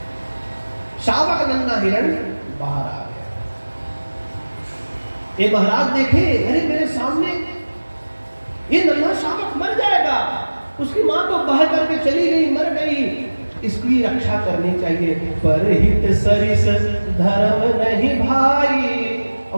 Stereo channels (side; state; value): both; inverted; correlation -1.00